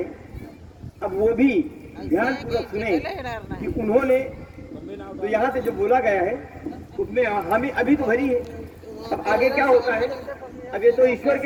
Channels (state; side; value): identical; both; correlation 1.00